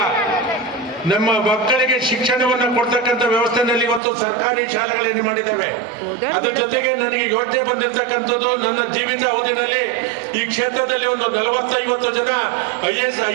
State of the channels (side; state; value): left; drops out; at 4.0 s